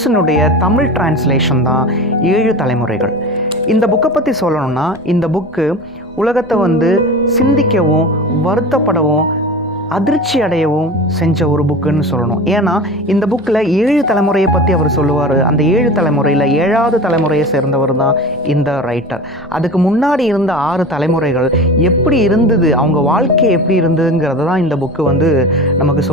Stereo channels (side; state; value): both; normal; correlation 0.33